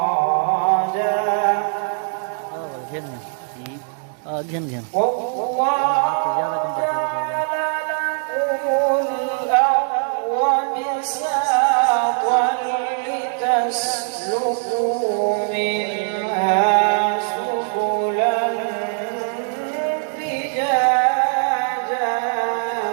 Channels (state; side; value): silent; left; digital silence